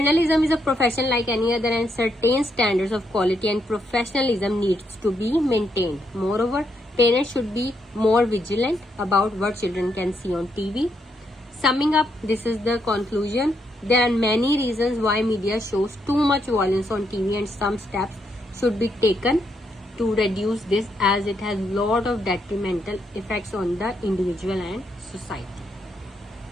is a profession like any other, and certain standards of quality and professionalism needs to be maintained. Moreover, parents should be more vigilant about what children can see on TV. Summing up, this is the conclusion. There are many reasons why media shows too much violence on TV, and some steps should be taken to reduce this, as it has lot of detrimental effects on the individual and society.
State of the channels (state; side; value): normal; both; correlation 0.78